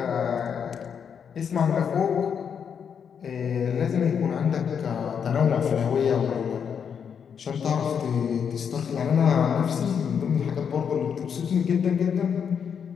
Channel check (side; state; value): right; quieter; 7.3 dB